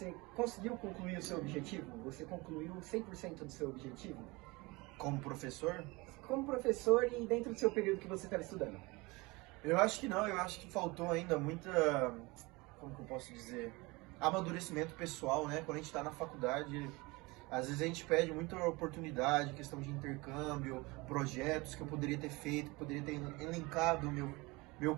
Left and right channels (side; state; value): left; quieter; 24.1 dB